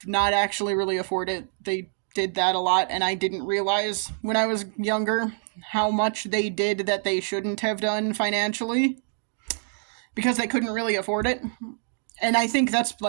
not actually really afford it, they did that a lot, and I didn't realize when I was younger how much they did that they shouldn't have done financially, because they couldn't really afford it. And I think that's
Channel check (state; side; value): silent; left; digital silence